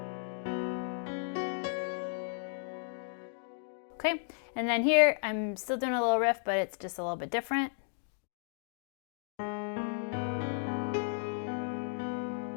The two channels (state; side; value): silent; right; digital silence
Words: Okay, and then here I'm still doing a little riff, but it's just a little bit different.